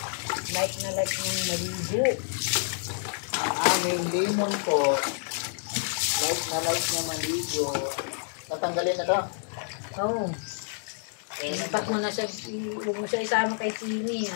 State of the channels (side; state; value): right; silent; digital silence